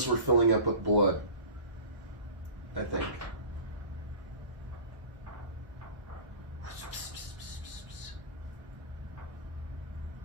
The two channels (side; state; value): left; late; 1.1 ms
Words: were filling up with blood. I think.